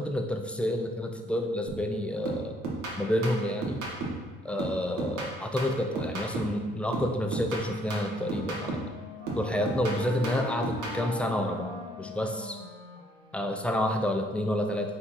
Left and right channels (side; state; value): both; normal; correlation 0.67